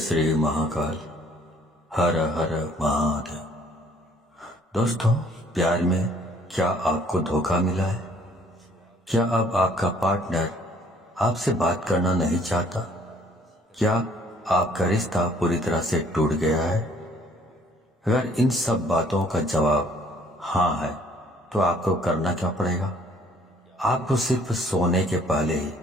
महाकाल। हर हर महादेव। दोस्तों, प्यार में क्या आपको धोखा मिला है? क्या अब आपका पार्टनर आपसे बात करना नहीं चाहता? क्या आपका रिश्ता पूरी तरह से टूट गया है? अगर इन सब बातों का जवाब हाँ है तो आपको करना क्या पड़ेगा? आपको सिर्फ सोने के पहले ही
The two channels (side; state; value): both; normal; correlation 0.60